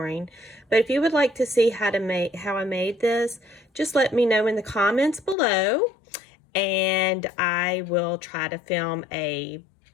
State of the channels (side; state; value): right; drops out; at 5.4 s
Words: But if you would like to see how I made this, just let me know in the comments below, and I will try to film a